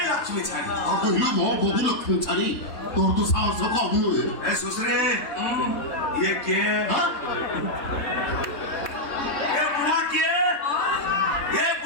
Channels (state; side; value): late; right; 3.2 ms